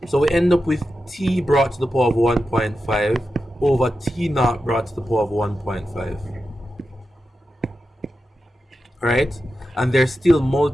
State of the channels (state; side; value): normal; both; correlation 0.90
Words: So we end up with t brought to the power of 1.5 over t naught brought to the power of 1.5. Right? And they're still